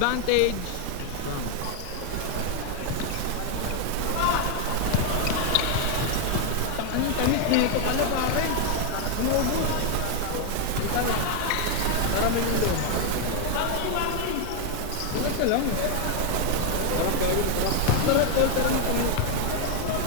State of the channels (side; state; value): both; different; correlation 0.00